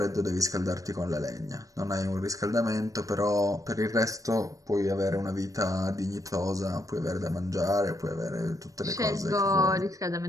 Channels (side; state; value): left; late; 0.16 ms